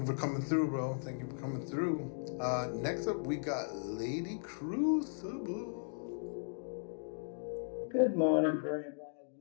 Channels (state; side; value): silent; right; digital silence